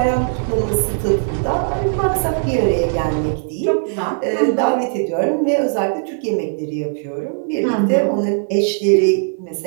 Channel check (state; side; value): silent; left; 61 dB below the other